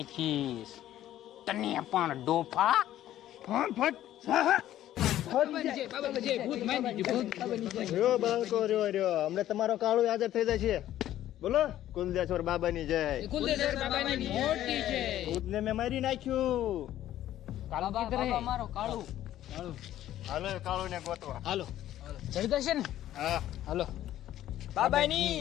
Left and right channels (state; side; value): quieter; right; 12.8 dB